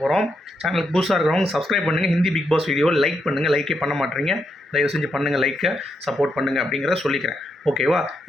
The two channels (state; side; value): normal; both; correlation 0.81